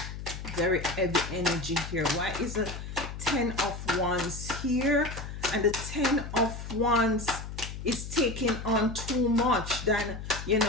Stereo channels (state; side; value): noise; left; hum, 9 dB below the sound